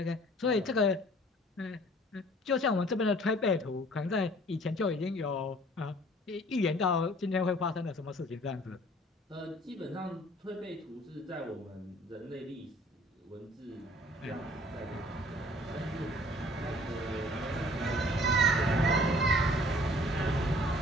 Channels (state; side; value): normal; both; correlation 0.53